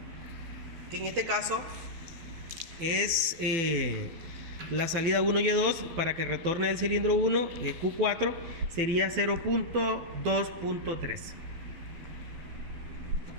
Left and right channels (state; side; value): late; left; 12 ms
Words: que en este caso es la salida 1Y2 para que retorne el cilindro 1, Q4 sería 0.2.3.